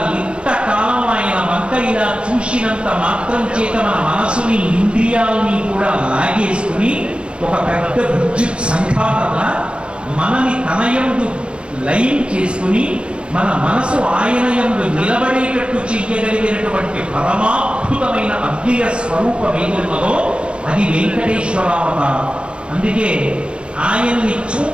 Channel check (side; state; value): left; late; 0.057 ms